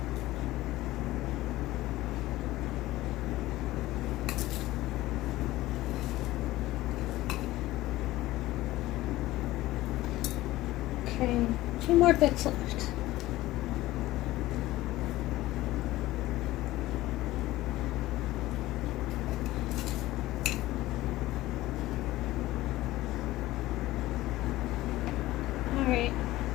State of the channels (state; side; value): quieter; right; 16.9 dB